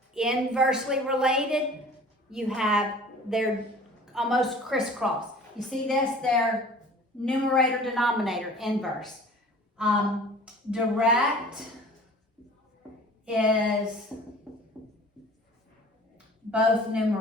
Inversely related, you have, they're almost crisscross. You see this? They're numerator, denominator, inverse. Direct is both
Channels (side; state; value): both; normal; correlation 0.45